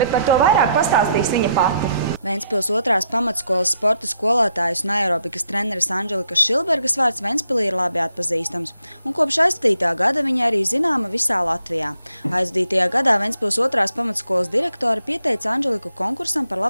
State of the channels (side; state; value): both; inverted; correlation -0.75